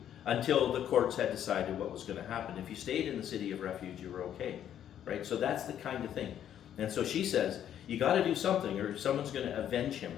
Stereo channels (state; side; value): quieter; right; 10.2 dB